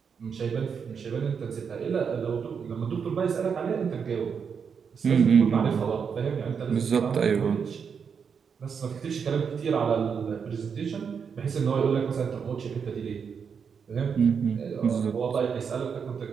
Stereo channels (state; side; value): quieter; left; 6.5 dB